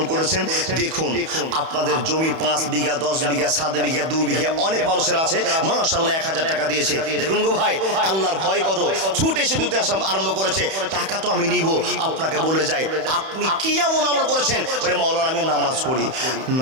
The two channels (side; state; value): left; late; 31 ms